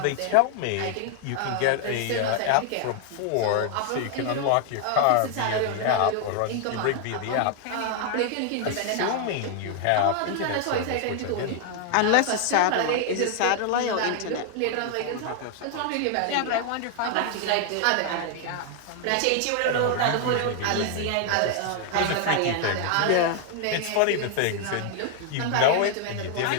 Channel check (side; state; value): both; different; correlation 0.00